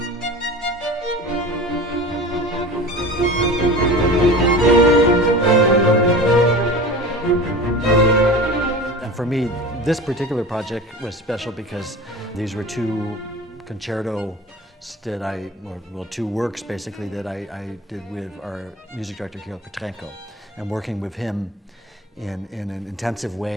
And for me, this particular project was special because these were two concertos that two works basically that I did with our music director, Georg Petrenko, and working with him in an intensive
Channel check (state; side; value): normal; both; correlation 0.35